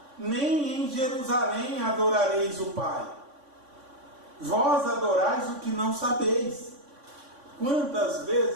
nem em Jerusalém adorareis o Pai. Vós adorais o que não sabeis. Quantas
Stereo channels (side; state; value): left; late; 3.5 ms